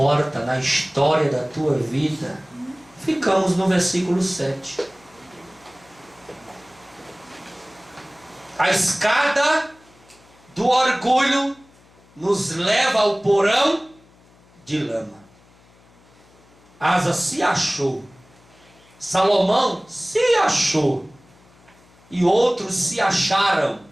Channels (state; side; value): noise; left; hum, 29 dB below the sound